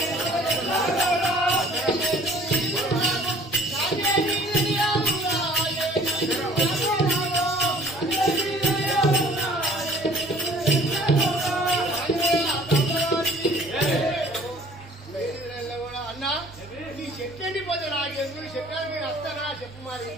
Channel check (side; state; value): both; normal; correlation 0.52